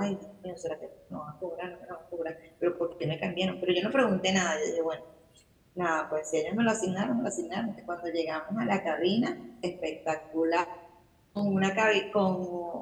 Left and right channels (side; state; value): both; identical; correlation 1.00